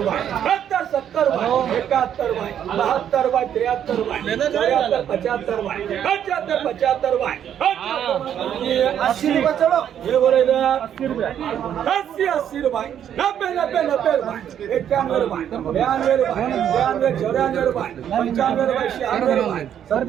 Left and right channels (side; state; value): left; quieter; 9.6 dB